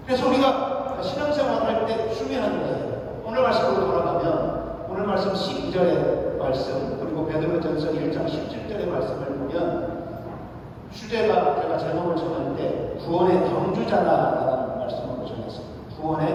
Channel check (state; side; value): identical; both; correlation 1.00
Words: 그래서 우리가 신앙생활을 할 때 중요한 거예요. 오늘 말씀으로 돌아가면 오늘 말씀 12절의 말씀 그리고 베드로전서 1장 17절의 말씀을 보면 주제가 제가 제목을 정할 때 구원의 경주자라는 말씀으로 정했습니다.